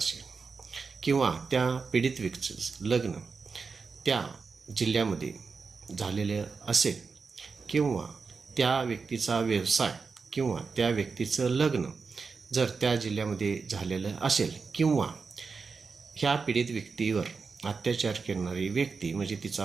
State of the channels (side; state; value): left; quieter; 4.9 dB